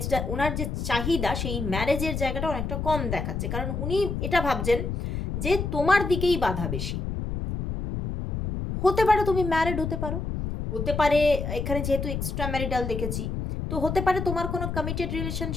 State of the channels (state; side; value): noise; left; rumble, 3 dB below the sound